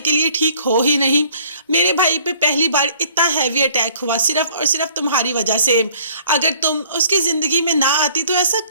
लिए ठीक हो ही नहीं। मेरे भाई पे पहली बार इतना हैवी अटैक हुआ सिर्फ और सिर्फ तुम्हारी वजह से। अगर तुम उसकी ज़िंदगी में ना आती तो ऐसा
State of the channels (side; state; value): both; inverted; correlation -0.56